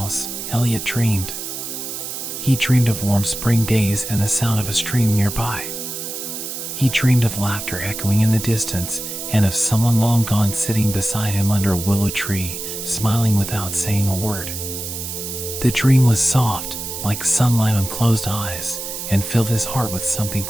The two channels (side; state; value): right; noise; hiss, 7 dB below the sound